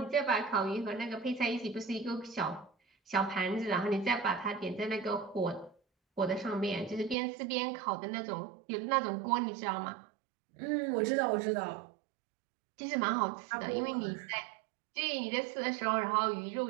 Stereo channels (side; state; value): left; drops out; at 7.2 s